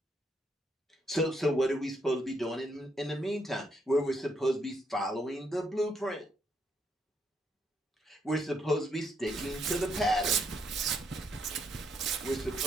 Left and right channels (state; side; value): normal; both; correlation 0.75